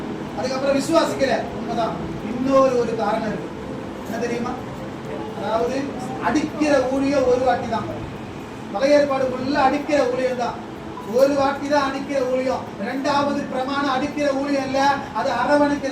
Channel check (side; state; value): both; identical; correlation 1.00